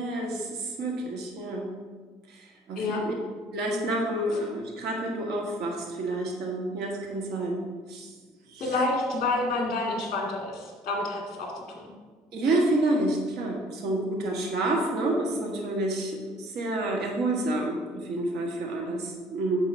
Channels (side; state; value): both; normal; correlation 0.54